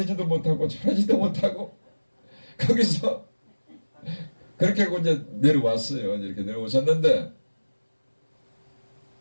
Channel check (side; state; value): both; inverted; correlation -1.00